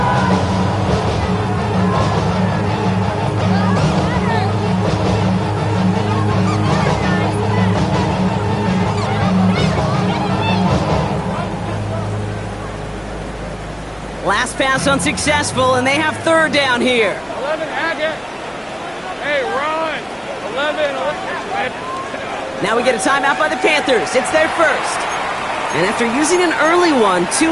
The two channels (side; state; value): both; identical; correlation 1.00